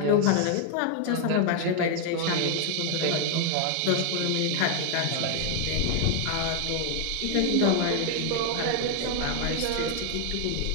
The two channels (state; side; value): different; both; correlation 0.00